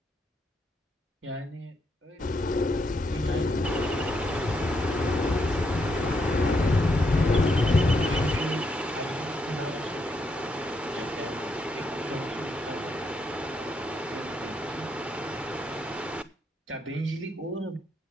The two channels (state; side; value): normal; both; correlation 0.78